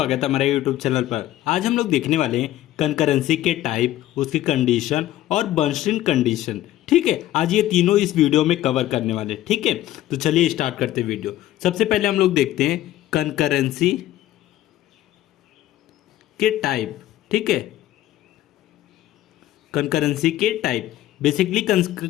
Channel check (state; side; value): quieter; right; 14.2 dB